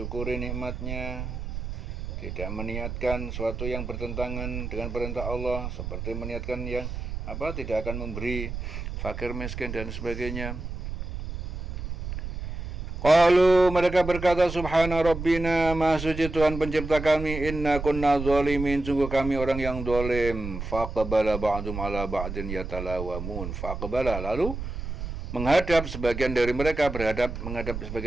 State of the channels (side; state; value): right; noise; rumble, 7 dB below the sound